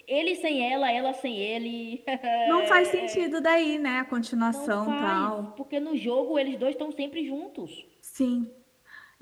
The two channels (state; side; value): identical; both; correlation 1.00